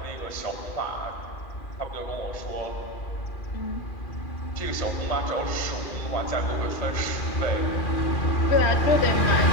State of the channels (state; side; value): late; right; 2.4 ms